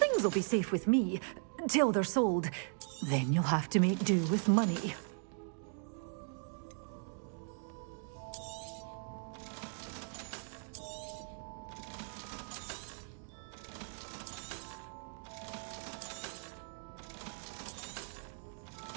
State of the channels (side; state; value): left; silent; 52 dB below the other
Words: will be safe with me, till they're sold. Then you'll have to make do with money.